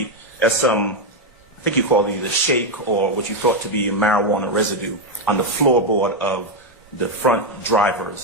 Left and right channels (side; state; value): both; normal; correlation 0.04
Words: as some, I think you called it either shake or what you thought to be marijuana residue on the floorboard of the front